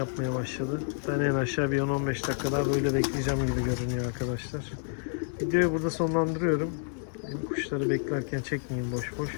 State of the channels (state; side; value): silent; right; digital silence